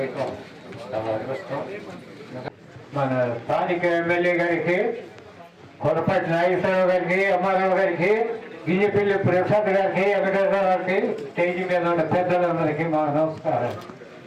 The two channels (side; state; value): both; identical; correlation 1.00